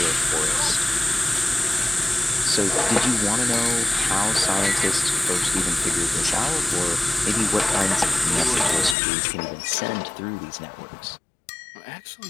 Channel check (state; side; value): drops out; right; at 9.0 s